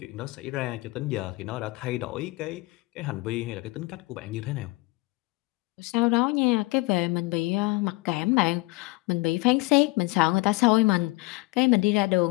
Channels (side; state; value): right; quieter; 23.9 dB